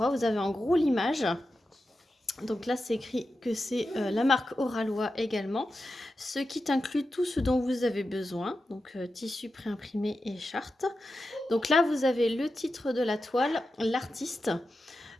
vous avez en gros l'image. Donc là c'est écrit que c'est la marque Oraloa également. Ce kit inclut tout ce dont vous avez besoin, donc tissu préimprimé et charte. Donc là vous avez le titre de la toile, l'artiste.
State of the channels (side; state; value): both; normal; correlation 0.91